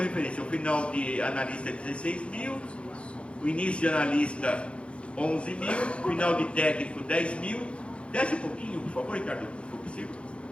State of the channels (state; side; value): late; right; 0.059 ms